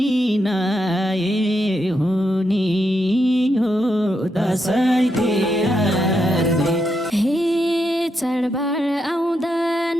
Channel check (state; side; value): normal; both; correlation 0.82